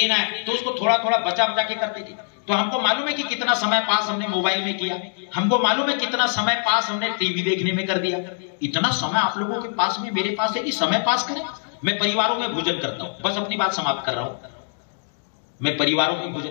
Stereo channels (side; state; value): right; silent; digital silence